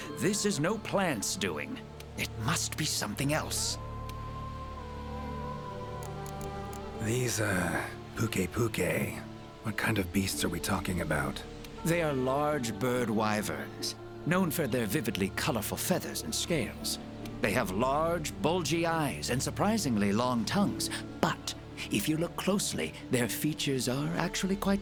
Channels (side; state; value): both; identical; correlation 1.00